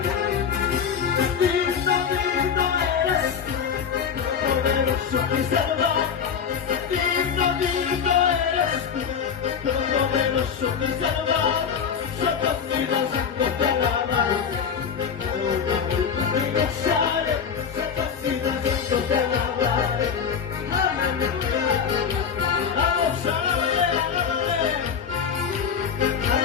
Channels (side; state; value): right; quieter; 7.1 dB